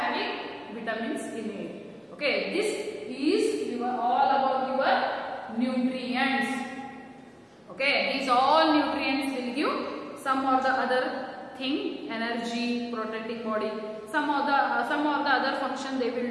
vitamins in it. Okay, this is all about your nutrients. Okay, these all nutrients will give some or the other thing, energy, protecting body, some of the other function they will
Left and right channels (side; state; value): both; identical; correlation 1.00